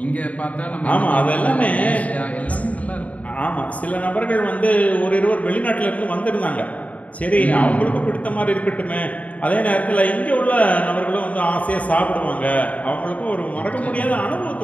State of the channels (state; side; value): late; right; 0.069 ms